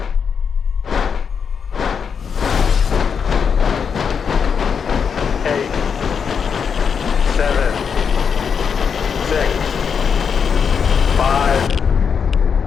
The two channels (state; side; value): quieter; right; 6.6 dB